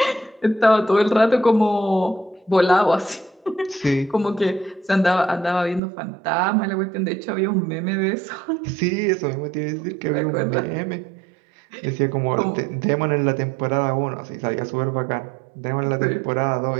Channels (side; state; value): left; drops out; at 5.8 s